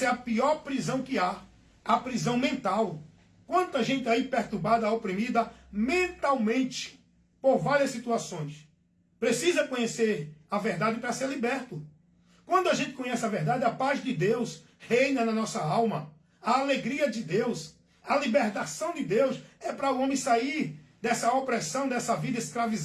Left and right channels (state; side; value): identical; both; correlation 1.00